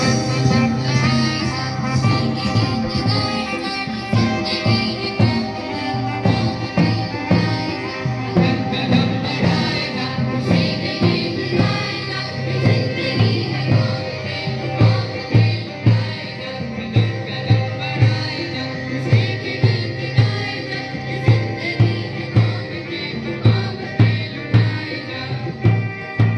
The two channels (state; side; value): identical; both; correlation 1.00